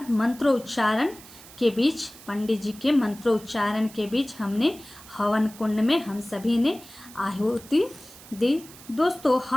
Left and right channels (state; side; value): noise; right; hiss, 19 dB below the sound